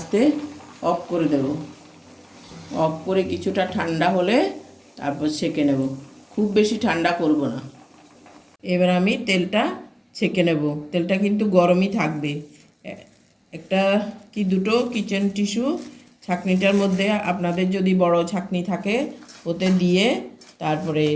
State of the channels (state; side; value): identical; both; correlation 1.00